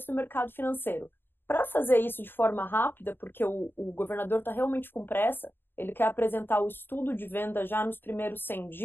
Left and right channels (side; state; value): right; late; 0.099 ms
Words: do mercado financeiro. para fazer isso de forma rápida, porque o governador está realmente com pressa, ele quer apresentar o estudo de venda já nos primeiros 100